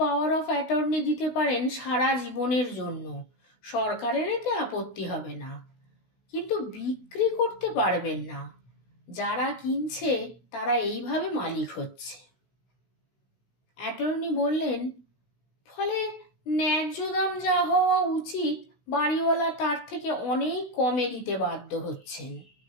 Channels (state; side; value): late; right; 16 ms